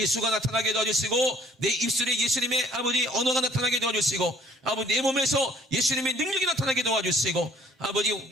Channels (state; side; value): normal; both; correlation 0.58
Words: 나타나게 도와주시고 내 입술에 예수님의 아버지 언어가 나타나게 도와주시고 아버지 내 몸에서 예수님의 능력이 나타나게 도와주시고 아버지